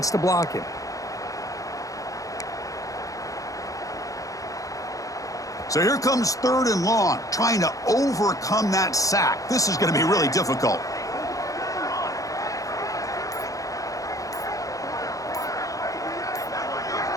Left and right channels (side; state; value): right; late; 0.16 ms